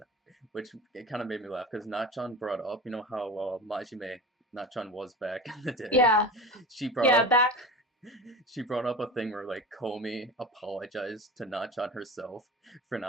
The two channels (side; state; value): both; normal; correlation 0.30